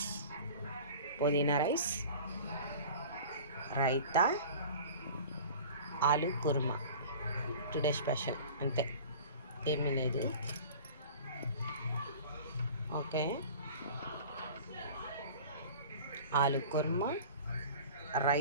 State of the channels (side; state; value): both; inverted; correlation -0.40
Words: రైతా, ఆలు కుర్మా. టుడే స్పెషల్ అంతే, ఏమీ లేదు. ఓకే, ఆలు కుర్మా,